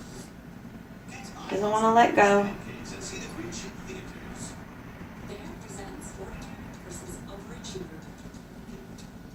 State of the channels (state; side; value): identical; both; correlation 1.00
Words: Doesn't want to let go.